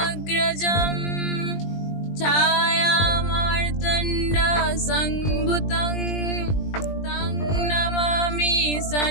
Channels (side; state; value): right; late; 20 ms